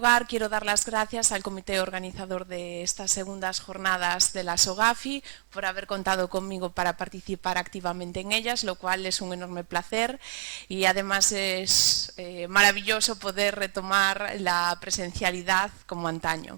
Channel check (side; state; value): left; silent; digital silence